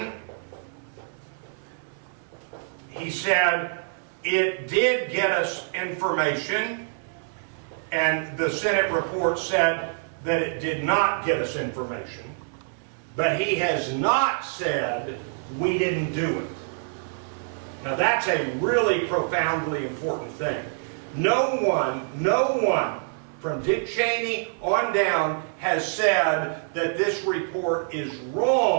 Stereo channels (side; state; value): left; silent; 61 dB below the other